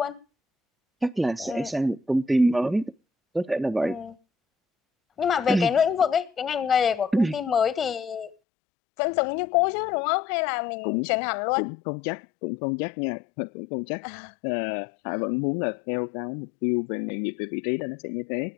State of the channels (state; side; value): drops out; right; at 8.3 s